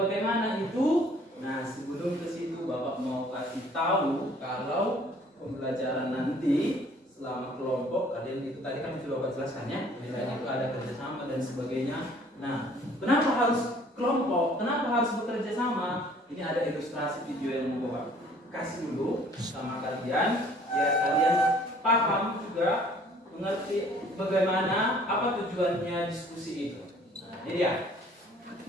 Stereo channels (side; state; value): both; normal; correlation 0.56